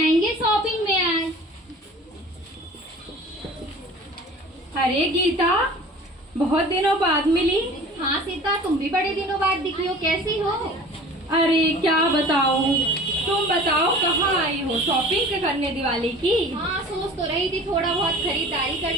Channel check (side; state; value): both; normal; correlation 0.43